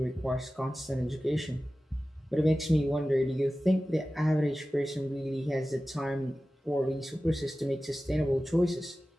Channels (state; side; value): normal; both; correlation 0.96